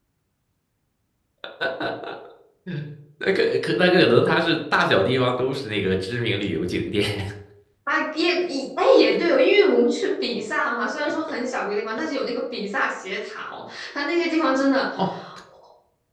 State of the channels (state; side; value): identical; both; correlation 1.00